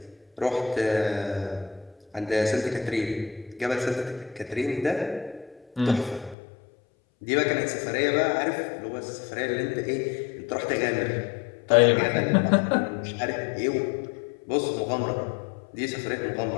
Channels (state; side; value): drops out; right; at 6.4 s